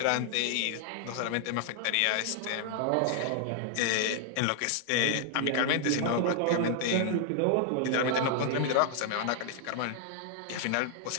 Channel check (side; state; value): both; different; correlation 0.00